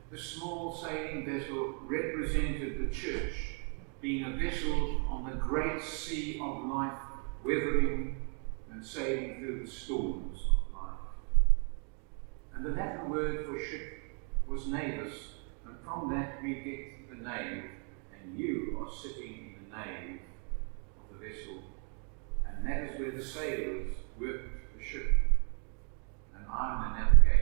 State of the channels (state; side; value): quieter; left; 38.9 dB